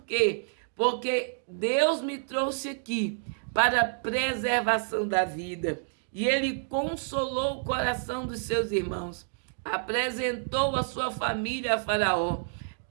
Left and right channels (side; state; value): left; silent; digital silence